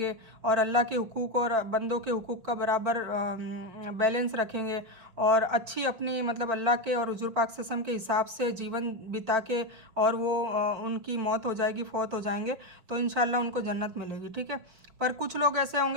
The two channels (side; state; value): left; late; 5.7 ms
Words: और अल्लाह के हुकूक और बंदों के हुकूक का बराबर बैलेंस रखेंगे और अच्छी अपनी मतलब अल्लाह के और हुजूर पाक सल्लल्लाहु अलैहि वसल्लम के हिसाब से जीवन बिता के और वो उनकी मौत हो जाएगी, फौत हो जाएंगे, तो इंशाल्लाह उनको जन्नत मिलेगी। ठीक है। पर कुछ लोग ऐसे